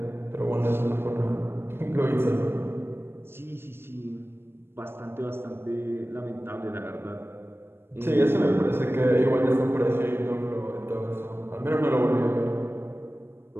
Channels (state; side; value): late; left; 0.11 ms